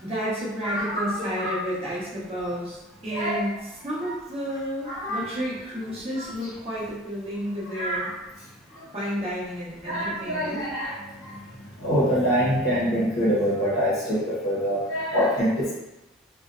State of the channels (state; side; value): normal; both; correlation 0.39